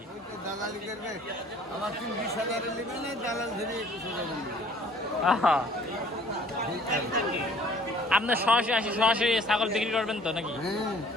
আপনার সরাসরি আসি, সরাসরি ছাগল বিক্রি করবেন তো নাকি?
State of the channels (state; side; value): normal; both; correlation 0.54